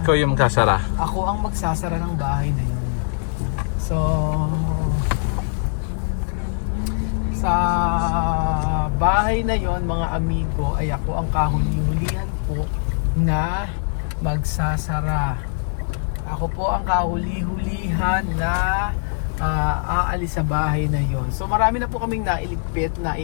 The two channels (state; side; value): silent; right; digital silence